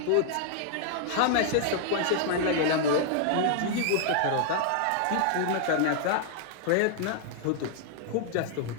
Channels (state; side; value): different; both; correlation 0.00